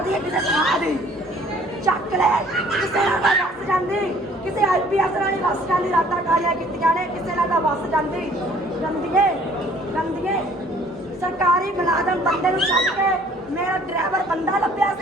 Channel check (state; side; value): normal; both; correlation 0.56